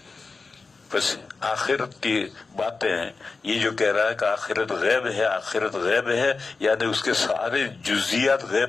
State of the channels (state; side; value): quieter; right; 4.2 dB